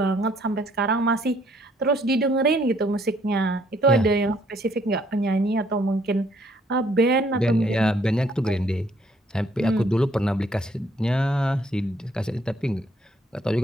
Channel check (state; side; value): normal; both; correlation 0.65